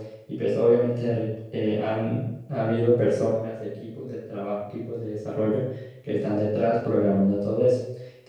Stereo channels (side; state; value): both; identical; correlation 1.00